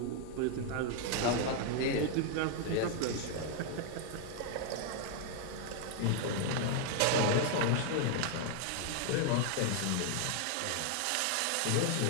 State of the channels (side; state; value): both; different; correlation 0.00